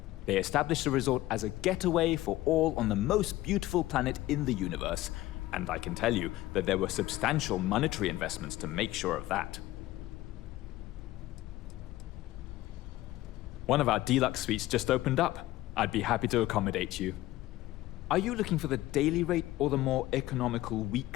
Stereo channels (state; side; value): quieter; right; 16.4 dB